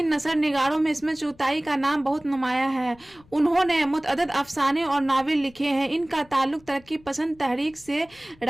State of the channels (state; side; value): noise; left; rumble, 27 dB below the sound